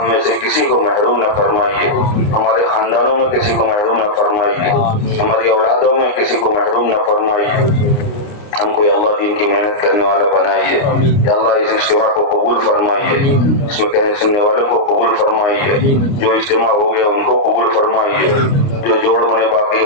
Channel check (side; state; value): right; late; 29 ms